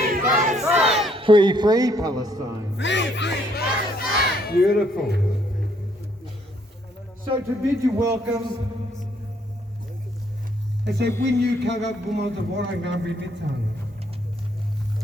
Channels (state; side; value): normal; both; correlation 0.68